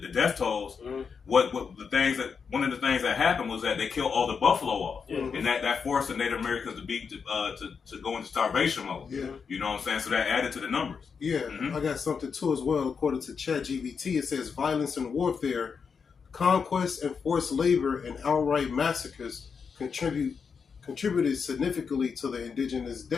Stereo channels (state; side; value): quieter; right; 5.9 dB